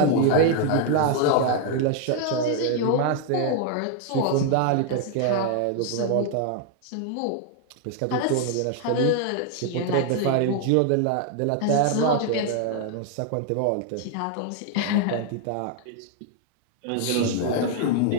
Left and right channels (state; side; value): different; both; correlation 0.00